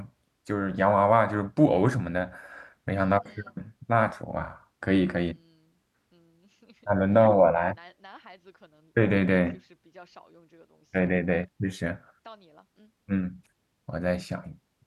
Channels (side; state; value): both; identical; correlation 1.00